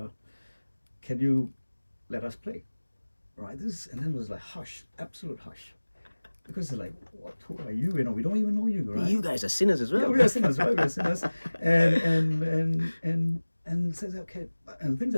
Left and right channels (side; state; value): both; inverted; correlation -1.00